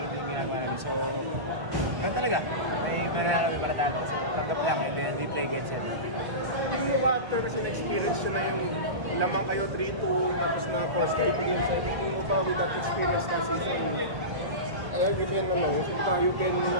din yung ginagawa namin. So, ganoon talaga. May mananalo, may paratalo. So, tanggap lang and then we play game 7. Yung after kasi na-experience yun na yung lamang kayo 3-2 tapos na first kayo game 7. Yung ba with that experience na season you can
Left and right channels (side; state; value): left; late; 1.1 ms